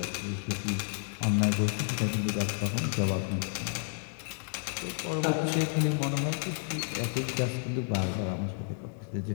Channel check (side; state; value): right; silent; 57 dB below the other